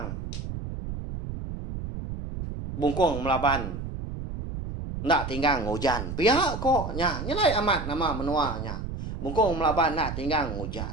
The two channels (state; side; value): noise; right; rumble, 6 dB below the sound